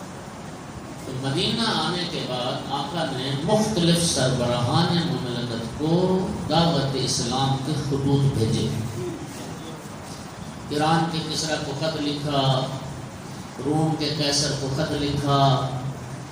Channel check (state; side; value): identical; both; correlation 1.00